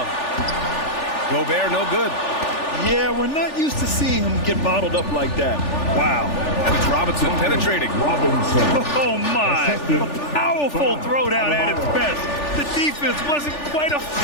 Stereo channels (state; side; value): late; right; 3.4 ms